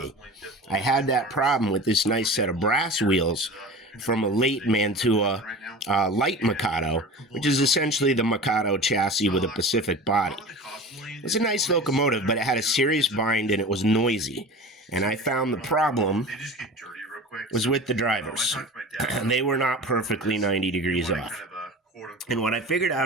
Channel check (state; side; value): normal; both; correlation 0.35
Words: I had that problem with this nice set of brass wheels from a late Mantua light Mikado, which is essentially the Mikado chassis with a Pacific body. It's a nice locomotive, but it had a serious bind and it was noisy. And I found the problem was with the drivers. They were not perfectly 90 degrees off. And what I figured